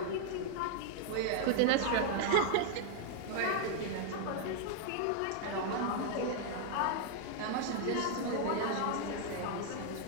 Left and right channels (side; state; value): both; different; correlation 0.00